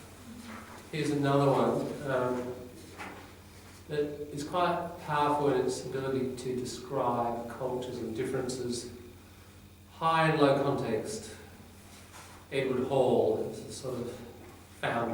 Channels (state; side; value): identical; both; correlation 1.00